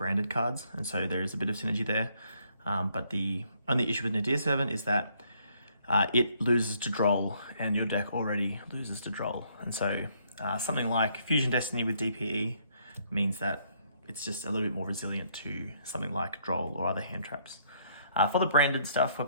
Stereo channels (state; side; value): inverted; both; correlation -0.69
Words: cards, and so there is a bit of synergy there. But the only issue with Nadir Servant is that it loses to Droll, and your deck already loses to Droll. And so something like Fusion Destiny with DPE means that it's just a little bit more resilient to something like Droll or other hand traps. For the branded stuff, we're